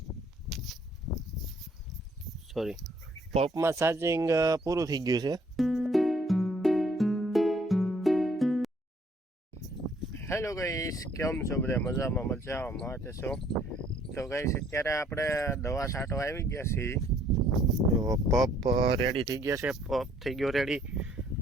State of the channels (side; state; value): both; normal; correlation 0.63